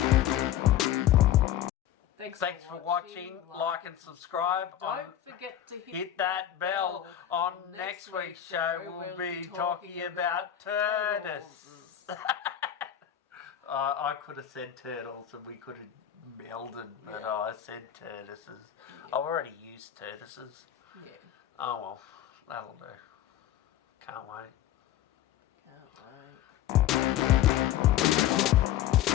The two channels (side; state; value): right; quieter; 11.2 dB